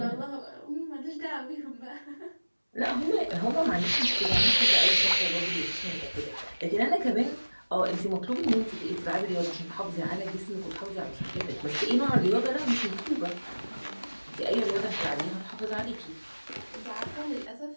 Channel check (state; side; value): inverted; both; correlation -1.00